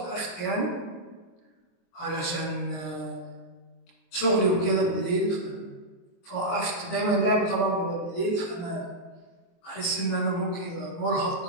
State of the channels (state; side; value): late; right; 23 ms